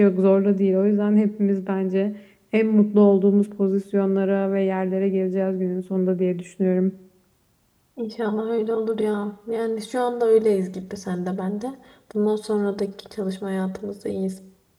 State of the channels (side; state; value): both; identical; correlation 1.00